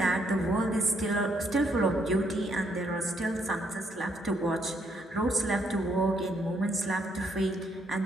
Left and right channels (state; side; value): normal; both; correlation 0.72